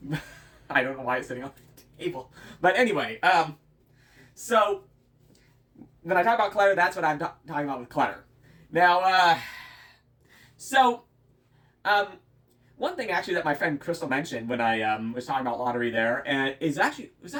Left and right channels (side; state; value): both; identical; correlation 1.00